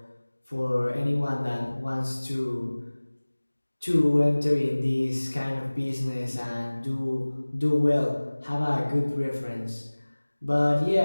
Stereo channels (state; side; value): inverted; both; correlation -1.00